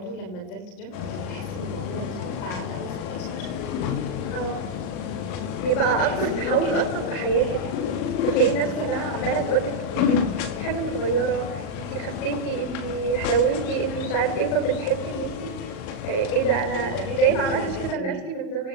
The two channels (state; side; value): late; right; 39 ms